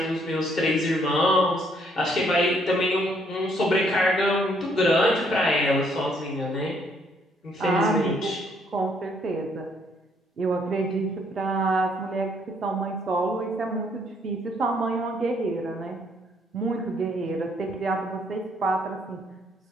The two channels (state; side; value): normal; both; correlation 0.68